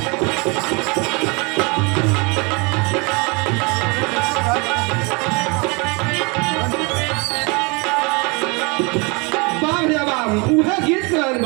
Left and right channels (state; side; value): quieter; left; 29.8 dB